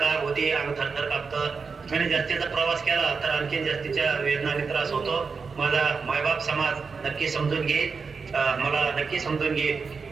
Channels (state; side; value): quieter; left; 5.1 dB